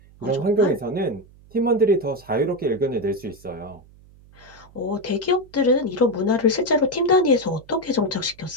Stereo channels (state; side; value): noise; right; hum, 25 dB below the sound